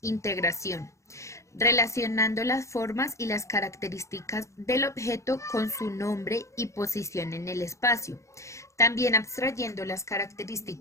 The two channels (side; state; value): right; late; 0.15 ms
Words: relacionando las formas y las características del objeto con su nombre y posición en el espacio, también abstrayendo las